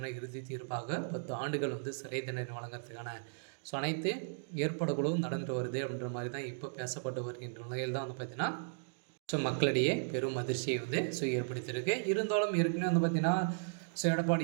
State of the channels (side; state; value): left; silent; digital silence